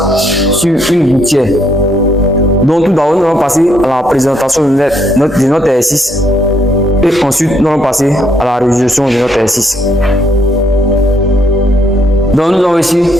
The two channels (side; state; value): both; normal; correlation 0.72